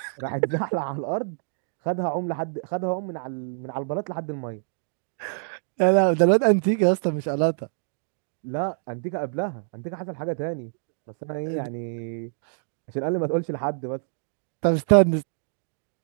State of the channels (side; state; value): left; silent; digital silence